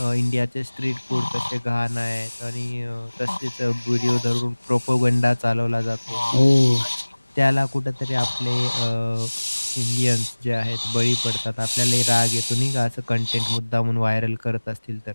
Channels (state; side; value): inverted; both; correlation -1.00